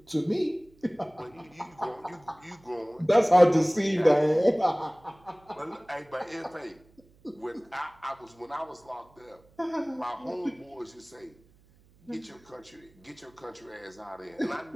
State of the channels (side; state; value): right; noise; hum, 30 dB below the sound